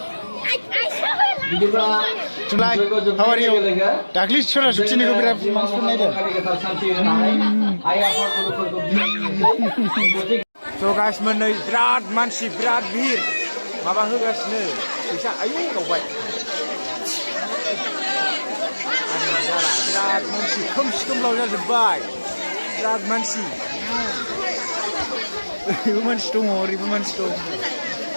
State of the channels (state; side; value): inverted; both; correlation -1.00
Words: बिदिब्ला जुलाय how are you दाख्लै सरासतिनिखौ बिराद मानसिफोर नायदों स' गाइस मोनै बिराद मानसि बिराद भिर माबा होगासिनो फैसा आयौ गावबाय बिराद मानसि खोमसि खोमलाव जाजोब्बाय बिराद मानसि ओरैबो मानसि दङ ओरैबो मानसि दं